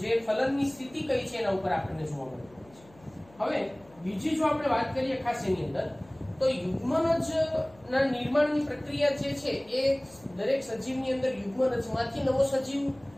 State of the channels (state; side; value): noise; left; hum, 26 dB below the sound